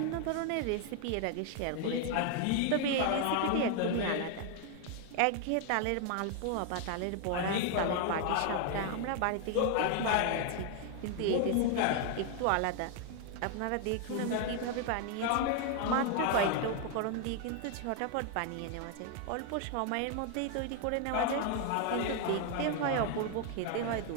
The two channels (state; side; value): different; both; correlation 0.00